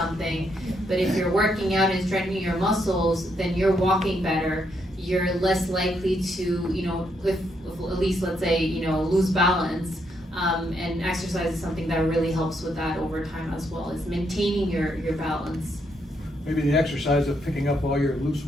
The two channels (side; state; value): both; normal; correlation 0.76